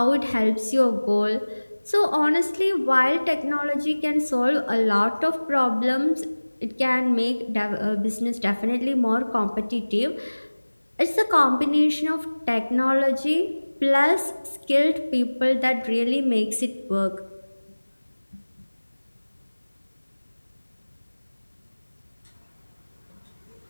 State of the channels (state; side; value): inverted; both; correlation -1.00